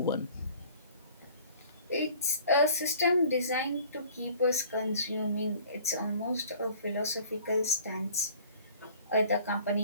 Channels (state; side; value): inverted; both; correlation -0.50